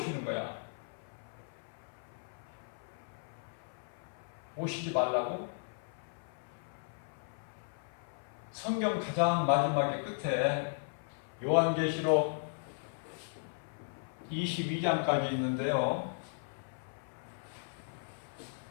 거야? 오시지 말라고? 성경 가장 마지막에 끝에 요한계시록 22장까지 있는데요.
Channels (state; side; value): silent; right; 53 dB below the other